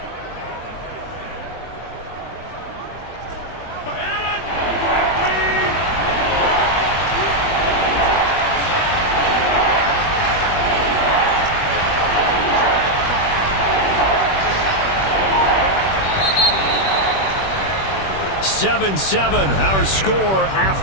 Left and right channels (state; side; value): late; right; 21 ms